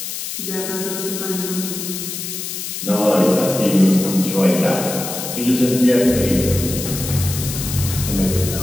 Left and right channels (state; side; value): noise; left; hiss, 6 dB below the sound